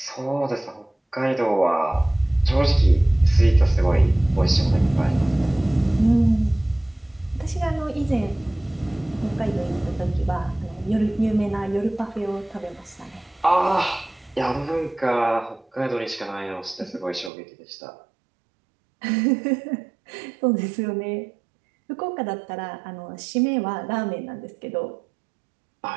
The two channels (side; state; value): left; drops out; at 17.3 s